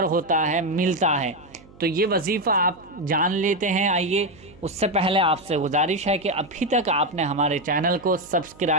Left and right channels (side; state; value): right; noise; hum, 24 dB below the sound